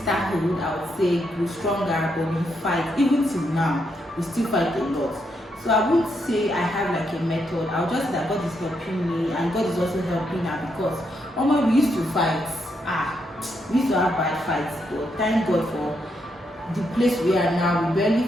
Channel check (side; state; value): both; normal; correlation 0.79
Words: I would say, grew stronger, but we fight. Even till now, we still fight a lot. So I wouldn't say I have like a method. I'll just say that God is helping me and God is also helping her because we used to fight. We used to have bad fights, but thank God for the place we are now. We barely